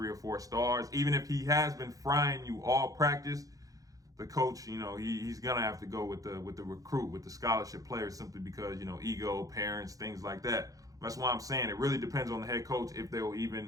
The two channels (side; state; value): left; late; 0.17 ms